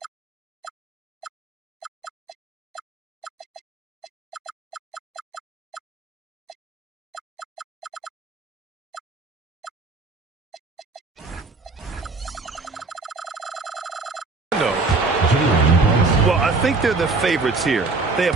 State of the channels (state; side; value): quieter; left; 3.7 dB